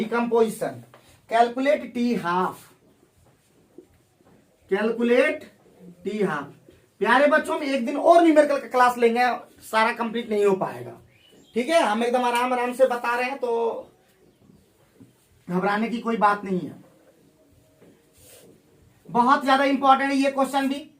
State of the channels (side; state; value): both; identical; correlation 1.00